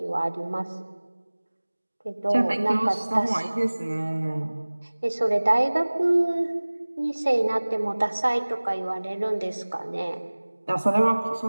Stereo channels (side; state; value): both; inverted; correlation -1.00